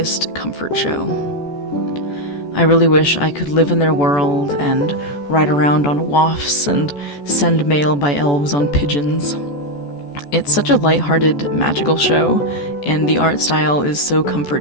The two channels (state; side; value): late; right; 14 ms